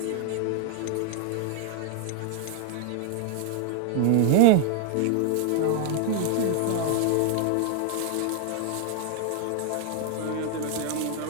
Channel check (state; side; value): different; both; correlation 0.00